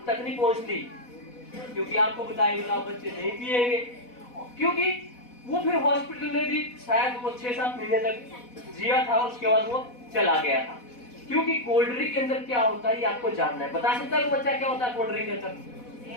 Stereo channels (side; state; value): right; late; 4.1 ms